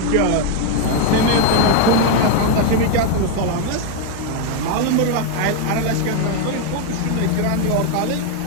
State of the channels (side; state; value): both; different; correlation 0.01